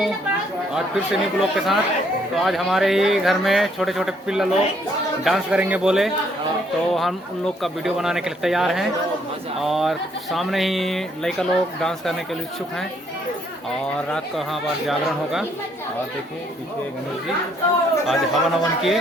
आज फिर से न्यू ब्लॉग के साथ। तो आज हमारे ही घर में छोटे छोटे पिल्ला लोग डांस करेंगे बोले, तो हम उन लोग का वीडियो बनाने के लिए तैयार हैं। और सामने ही लड़का लोग डांस करने के लिए इच्छुक हैं। और रात को यहाँ पर जागरण होगा। और देखिए पीछे गणेश जी आज हवन हवन किए,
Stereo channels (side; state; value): both; normal; correlation 0.68